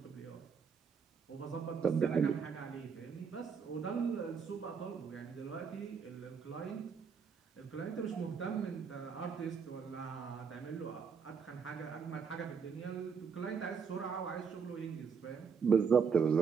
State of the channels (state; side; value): quieter; left; 6.1 dB